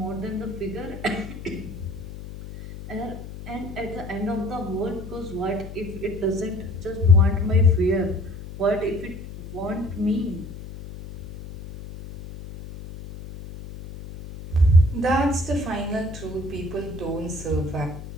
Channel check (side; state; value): left; noise; hum, 12 dB below the sound